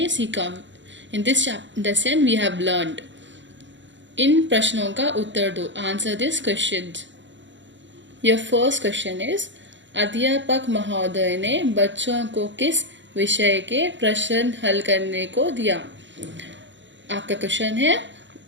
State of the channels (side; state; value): left; late; 0.54 ms